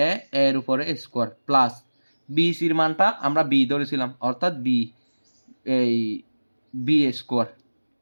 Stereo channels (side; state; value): both; inverted; correlation -1.00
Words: এ, এর উপরে স্কোয়ার প্লাস বিসির মানটা আমরা বি ধরেছিলাম, অর্থাৎ বি, এই বি স্কোয়ার,